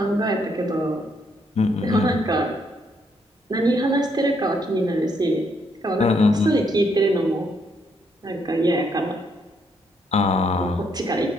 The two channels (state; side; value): normal; both; correlation 0.73